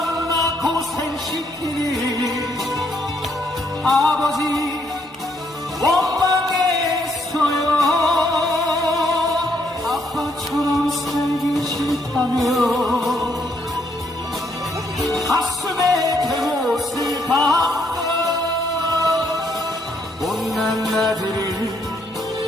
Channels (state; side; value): normal; both; correlation 0.72